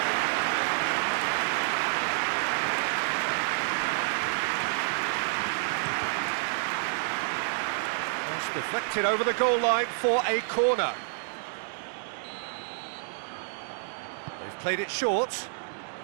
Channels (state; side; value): silent; left; digital silence